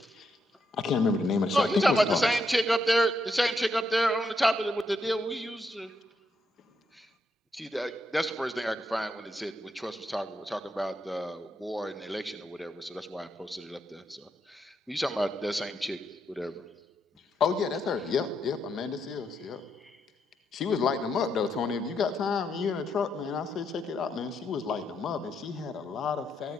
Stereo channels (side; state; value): both; normal; correlation 0.79